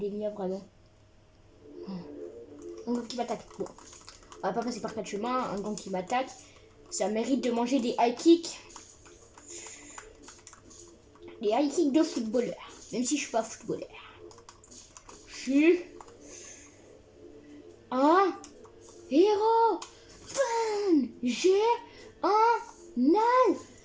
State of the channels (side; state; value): both; identical; correlation 1.00